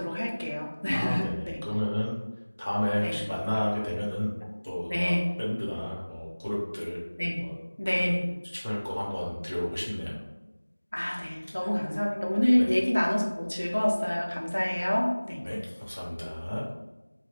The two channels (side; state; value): both; inverted; correlation -1.00